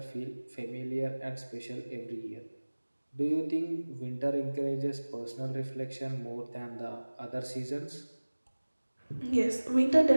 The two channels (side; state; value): both; inverted; correlation -1.00